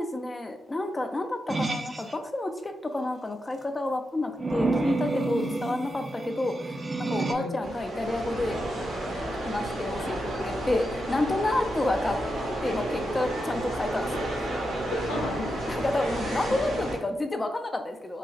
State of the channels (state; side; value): normal; both; correlation 0.87